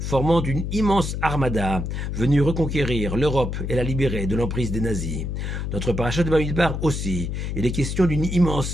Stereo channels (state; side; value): noise; left; hum, 3 dB below the sound